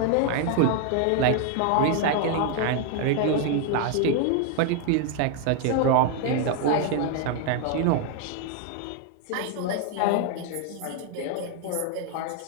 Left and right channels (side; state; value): both; different; correlation 0.00